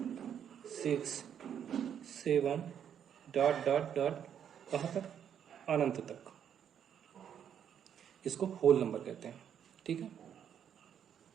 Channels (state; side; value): quieter; left; 8.8 dB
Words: 6 7 डॉट डॉट डॉट कहाँ तक, अनंत तक। इसको होल नंबर कहते हैं। ठीक है।